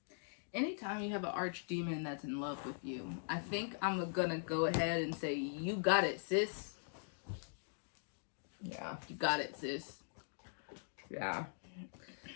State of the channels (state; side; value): silent; right; digital silence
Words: Anytime you have an archdemon that's in love with you, I think I'm gonna go ahead and say, you got it, sis. Yeah. You got it, sis. Yeah.